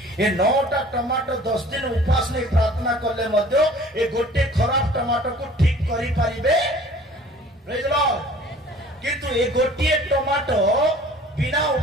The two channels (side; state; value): both; normal; correlation 0.49